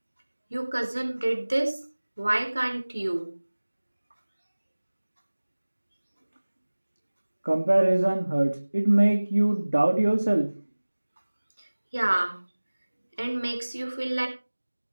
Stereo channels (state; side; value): inverted; both; correlation -1.00